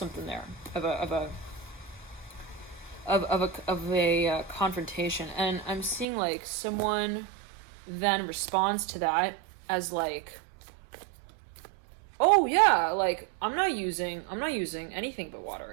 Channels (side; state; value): left; drops out; at 6.1 s